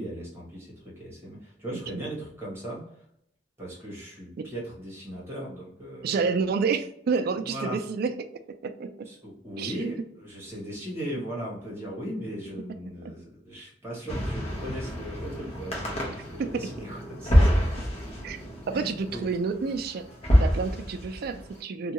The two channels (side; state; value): both; normal; correlation 0.68